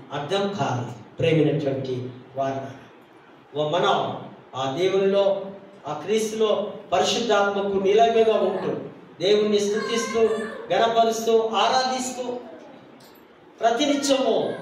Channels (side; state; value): both; identical; correlation 1.00